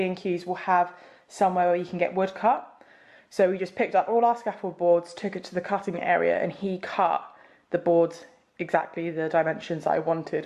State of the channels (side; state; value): both; identical; correlation 1.00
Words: will have somewhere where you can get wood cut. So we just picked up all our scaffold boards, took it to the cutting area, and he cut the boards exactly the dimensions I